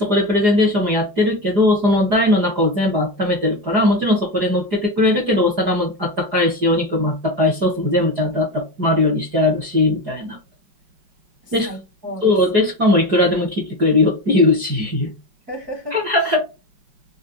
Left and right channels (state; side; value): late; left; 4.9 ms